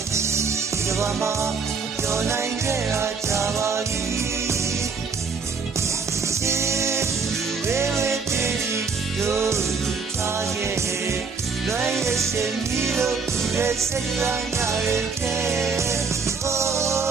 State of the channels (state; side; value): quieter; left; 5.1 dB